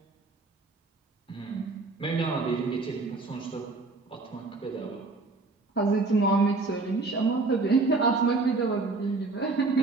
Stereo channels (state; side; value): quieter; left; 3.6 dB